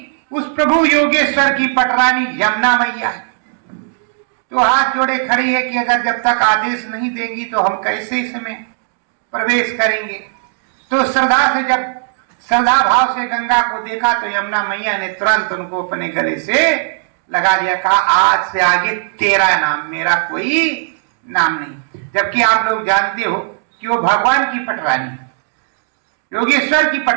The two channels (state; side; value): silent; left; digital silence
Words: उस प्रभु योगेश्वर की पटरानी यमुना मैया है। तो हाथ जोड़े खड़ी है कि अगर जब तक आदेश नहीं देंगी तो हम कैसे इसमें प्रवेश करेंगे। तो श्रद्धा से, जब श्रद्धा भाव से गंगा को देखा तो यमुना मैया ने तुरंत उनको अपने गले से लगा दिया, कहा आज से आगे तेरा नाम, मेरा कोई नाम नहीं। जबकि आप लोग जानते हो कि वो भगवान की पटरानी, योगेश्वर की